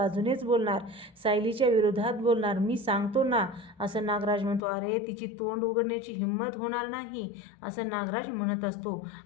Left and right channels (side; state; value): right; drops out; at 4.6 s